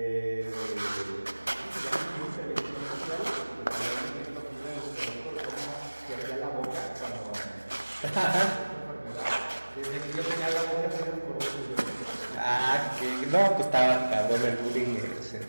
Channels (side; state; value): both; inverted; correlation -1.00